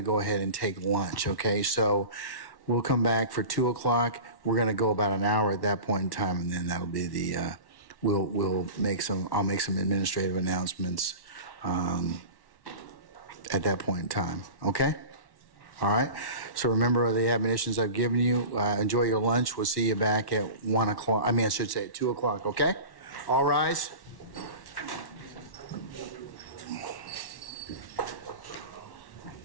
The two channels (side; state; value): right; late; 1.1 ms